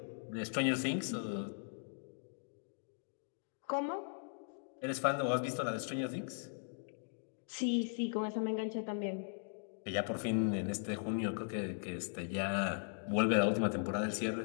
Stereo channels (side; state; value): right; silent; digital silence